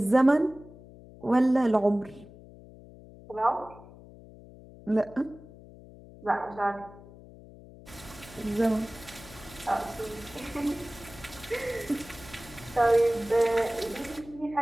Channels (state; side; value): noise; left; hum, 19 dB below the sound